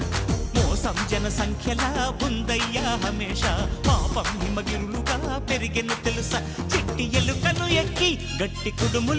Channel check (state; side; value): identical; both; correlation 1.00